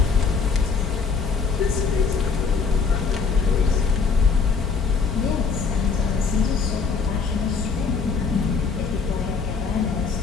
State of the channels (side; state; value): right; quieter; 5.2 dB